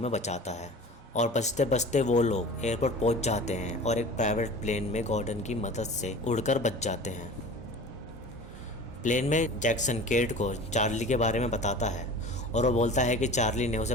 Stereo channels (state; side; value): normal; both; correlation 0.39